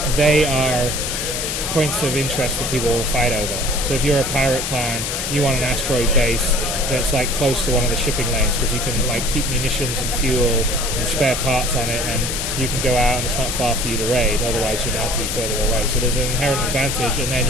they are points of interest that people will fight over. So if you're a pirate clan, you want an asteroid base that's like close to one of the shipping lanes, because you can like keep munitions and fuel and spare parts on it, and you can go out and it's not far for you to raid. Otherwise, you'd have to be further away. So there's an inherent advantage, and then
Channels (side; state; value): left; noise; hiss, 2 dB below the sound